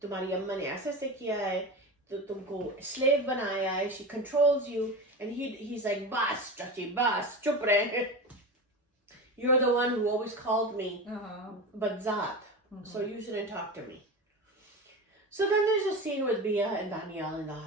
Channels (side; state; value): both; normal; correlation 0.26